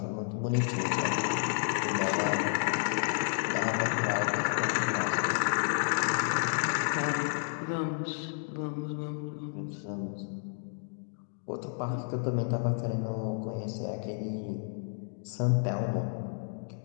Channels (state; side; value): silent; right; digital silence